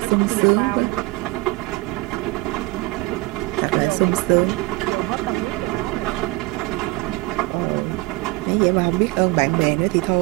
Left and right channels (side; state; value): left; quieter; 22.5 dB